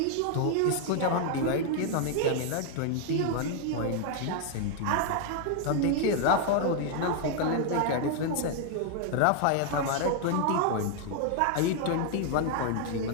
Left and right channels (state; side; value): different; both; correlation 0.00